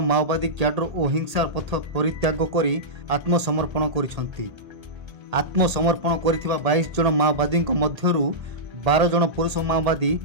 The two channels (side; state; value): left; late; 1.8 ms